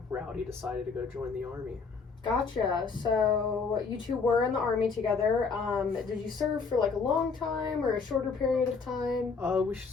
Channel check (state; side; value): quieter; right; 4.9 dB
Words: Rowdy decided to go join the Army. Gotcha. So you two were in the Army together. Did you serve for like a long time or a shorter period of time? We